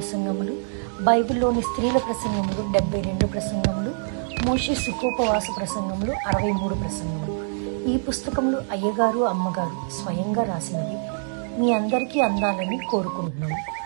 బైబిల్లోని స్త్రీల ప్రసంగములు 72 ప్రసంగములు, మోషే సుఖోపవాస ప్రసంగములు 63 ప్రసంగములు. ఈ పుస్తకములు అయ్యగారు అమ్మగారు స్వయంగా రాసినవి మీ అందరికీ అందాలని కోరుకుంటున్నాము.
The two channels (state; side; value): silent; left; digital silence